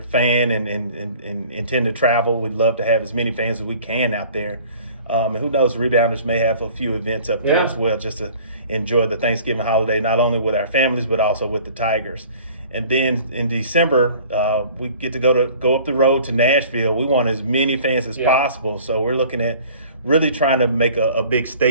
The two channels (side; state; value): both; inverted; correlation -0.48